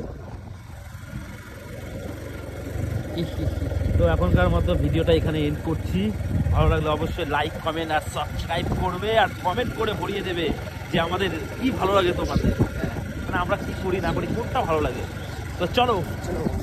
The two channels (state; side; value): identical; both; correlation 1.00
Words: তো এখনকার মতো ভিডিওটা এখানে এন্ড করছি। ভালো লাগলে অবশ্যই লাইক, কমেন্ট আর সাবস্ক্রাইব করবে, আর কমেন্ট করে ভরিয়ে দেবে যে আমাদের কি ভালো লাগে তোমাদের, মানে আমরা কি করি না করি, কোনটা ভালো লাগে। তো চলো,